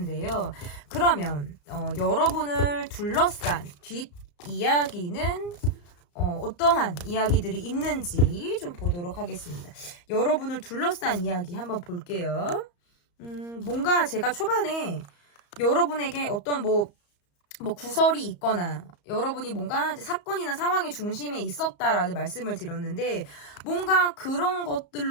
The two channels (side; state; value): right; late; 34 ms